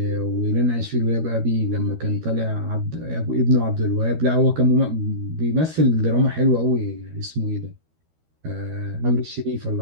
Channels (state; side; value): late; left; 13 ms